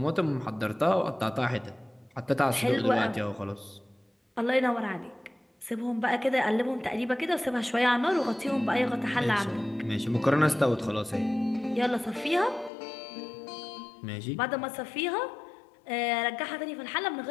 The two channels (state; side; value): drops out; right; at 12.7 s